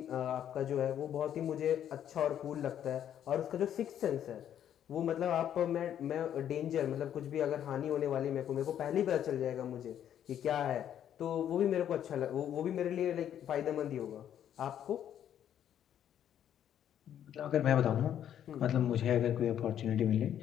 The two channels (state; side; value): quieter; right; 10.1 dB